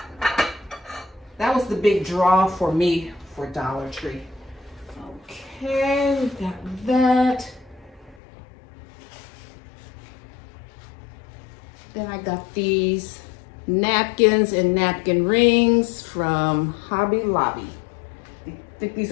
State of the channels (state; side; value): drops out; right; at 8.2 s